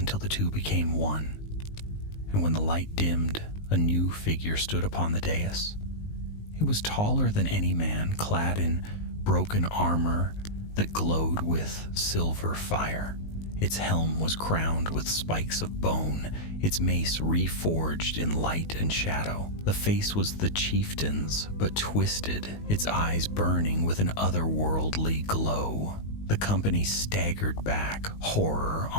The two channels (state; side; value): late; right; 19 ms